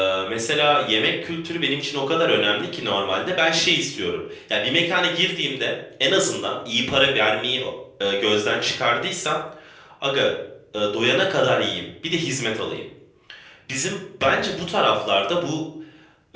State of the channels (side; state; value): both; identical; correlation 1.00